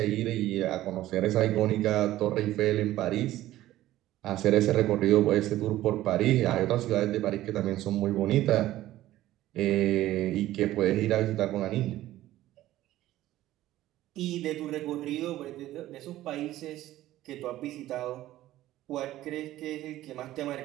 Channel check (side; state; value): left; quieter; 14.8 dB